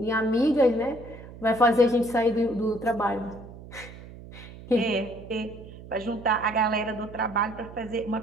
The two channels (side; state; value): right; noise; hum, 16 dB below the sound